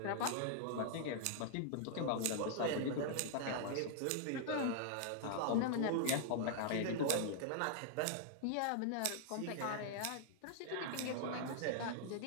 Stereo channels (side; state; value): both; different; correlation -0.01